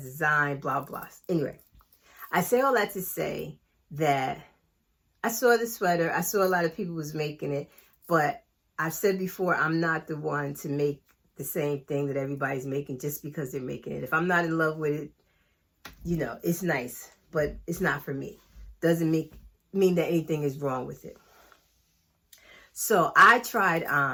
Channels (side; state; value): both; identical; correlation 1.00